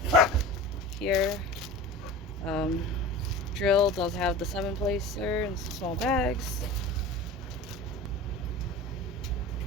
here. Drill does have the 7-placer and some small bags.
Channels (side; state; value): both; normal; correlation 0.34